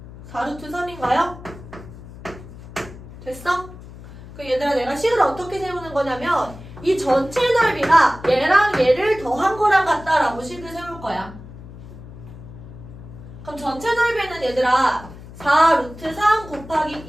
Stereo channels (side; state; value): left; noise; hum, 16 dB below the sound